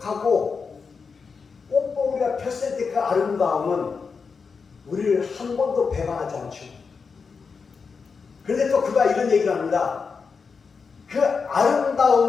꽃봉오리가 폈을 때 그 아름다움은 우리를 한 번도 배반하지 않죠. 그런데 또 그가 이런 얘기를 합니다. 그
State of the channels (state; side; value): quieter; right; 5.3 dB